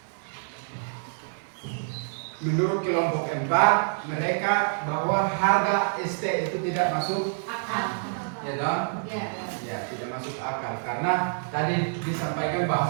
Menurut kelompok 4, mereka bahwa harga ST itu tidak masuk Akal. ya dong? Ya. Ya, tidak masuk akal karena tadi disampaikan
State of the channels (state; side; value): silent; left; digital silence